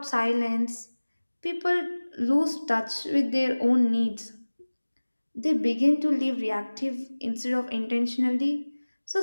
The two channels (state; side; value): inverted; both; correlation -1.00